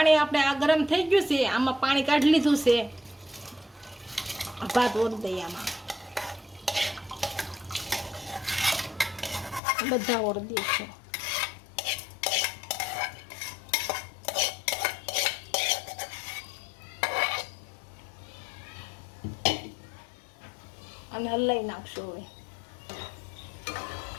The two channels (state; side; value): drops out; right; at 9.6 s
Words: આપણે આ ગરમ થઈ ગયું છે, આમાં પાણી કાઢી લીધું છે, ભાત ઓરી દઈએ આમાં, બધા ઓરી દઈશું। અને હલાઈ નાખશું। હવે